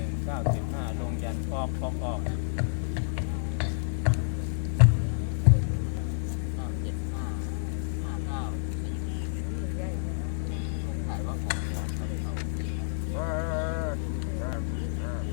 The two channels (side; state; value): right; silent; digital silence